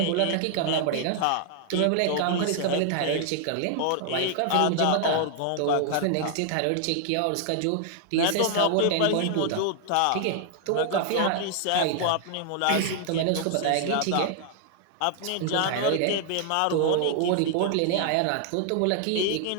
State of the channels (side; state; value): both; different; correlation 0.00